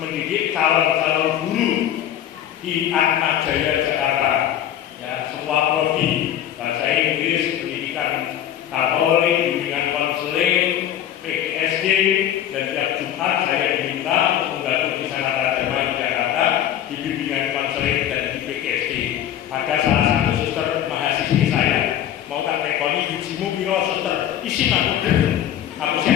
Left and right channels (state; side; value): quieter; right; 10.8 dB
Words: mendidik calon-calon guru di Atmajaya Jakarta. Ya, semua prodi, bahasa Inggris, pendidikan Katolik, bimbingan konseling, PGSD, dan tiap Jumat saya diminta untuk membantu di sana Dharma di Jakarta di bimbingan konseling dan di PGSD. Ada salah satu suster mahasiswi saya mau tak rekoni bijimu piro suster, isi aku